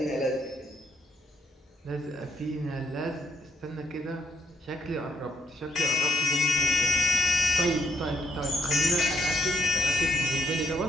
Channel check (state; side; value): normal; both; correlation 0.74